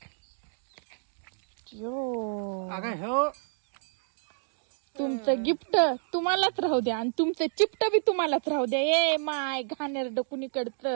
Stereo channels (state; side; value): silent; left; digital silence